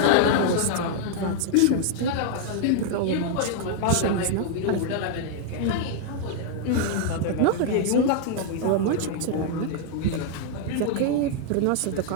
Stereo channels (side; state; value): both; different; correlation -0.01